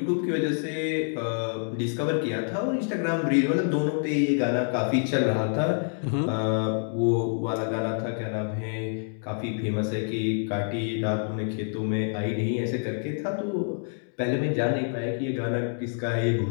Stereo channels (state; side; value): silent; right; digital silence